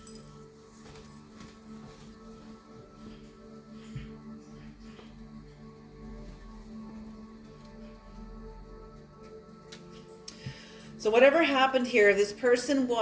So whatever happened here, this person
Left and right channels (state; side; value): identical; both; correlation 1.00